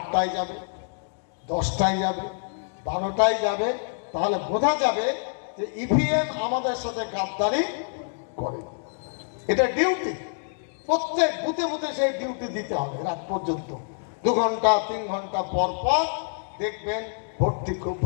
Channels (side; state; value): right; silent; digital silence